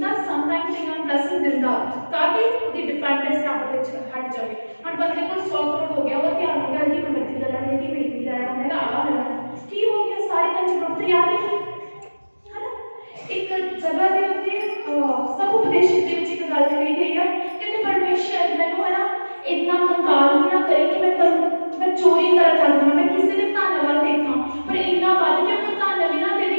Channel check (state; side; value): inverted; both; correlation -1.00